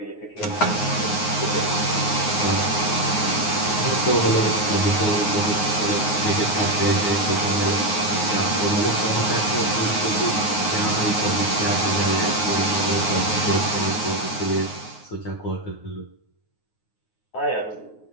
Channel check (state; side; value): late; right; 9.5 ms